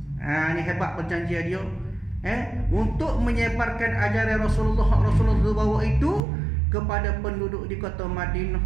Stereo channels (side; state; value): left; drops out; at 6.2 s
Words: Ini hebat perjanjian dia, untuk menyebarkan ajaran Rasulullah bawa itu kepada penduduk di kota Madinah.